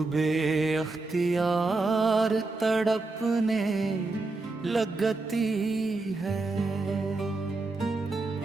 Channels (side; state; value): left; quieter; 3.4 dB